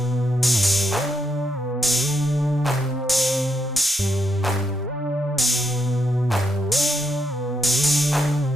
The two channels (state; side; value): normal; both; correlation 0.80